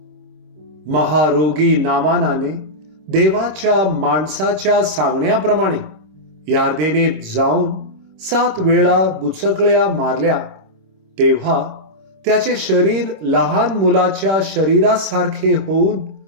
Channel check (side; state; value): left; late; 26 ms